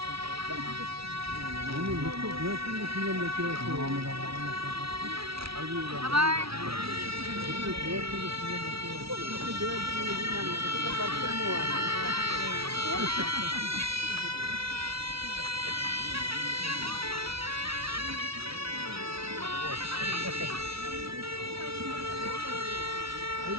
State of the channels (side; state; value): left; late; 0.76 ms